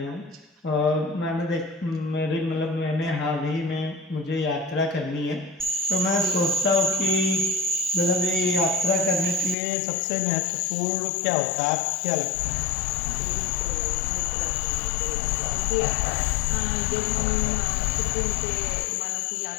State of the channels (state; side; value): drops out; right; at 9.6 s